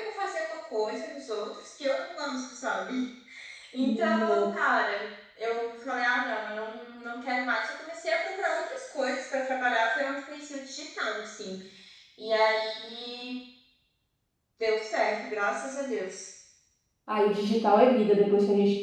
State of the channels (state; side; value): identical; both; correlation 1.00